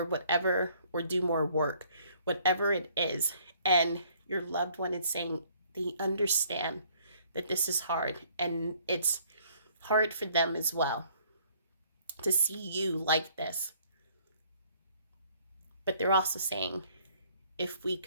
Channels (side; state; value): both; inverted; correlation -0.61